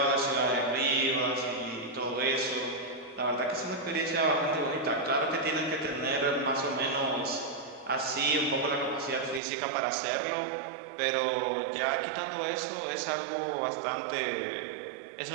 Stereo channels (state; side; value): drops out; left; at 9.4 s